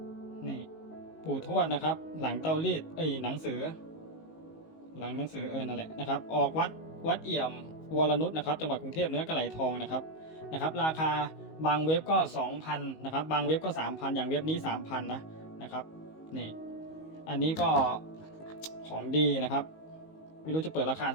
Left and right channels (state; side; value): late; right; 19 ms